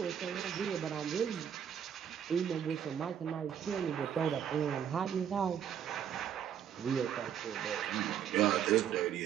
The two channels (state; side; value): quieter; left; 9.0 dB